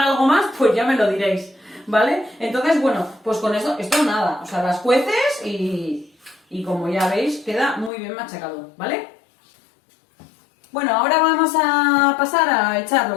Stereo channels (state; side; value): drops out; right; at 7.9 s